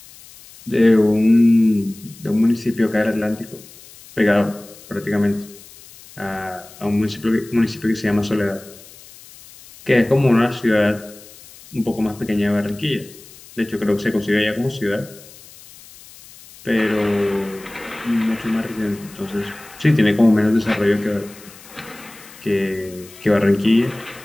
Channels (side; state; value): left; noise; hiss, 21 dB below the sound